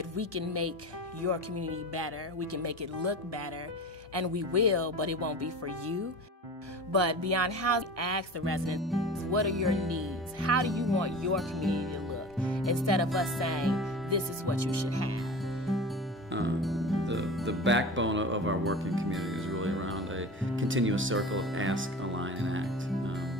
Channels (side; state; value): both; normal; correlation 0.34